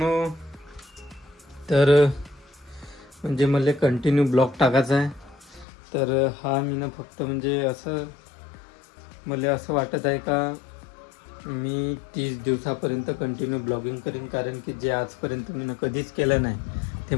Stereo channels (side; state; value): right; drops out; at 5.7 s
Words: तर म्हणजे मला कंटिन्यू ब्लॉग टाकायचा आहे. तर हा मी ना फक्त म्हणजे असं मला असं वाटत आहे का मी 30 दिवसापर्यंत कंटिन्यू ब्लॉगिंग करीन, कारण की जे आजपर्यंत मी कधीच केलं नाही ते